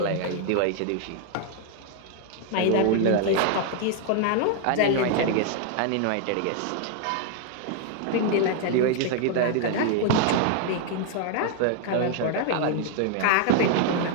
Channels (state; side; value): different; both; correlation 0.00